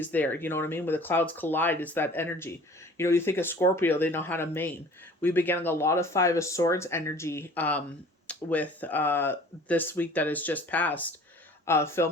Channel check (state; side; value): normal; both; correlation 0.47